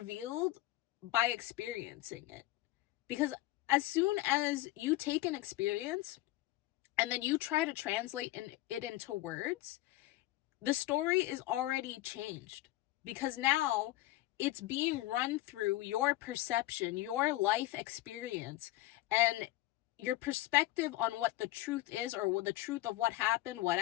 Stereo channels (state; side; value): quieter; right; 17.2 dB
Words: by experiencing it. Because as soon as you take an experience and then you try to translate it into words, the story is already changed. Because now it's being run through your perception, your life experience, and your perspective on what the truth is, or the truth of what happened,